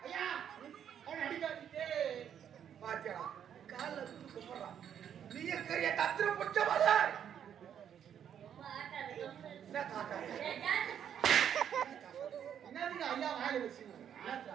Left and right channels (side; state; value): left; quieter; 9.0 dB